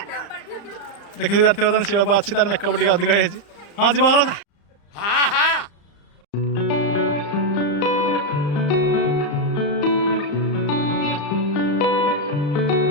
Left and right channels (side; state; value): right; late; 35 ms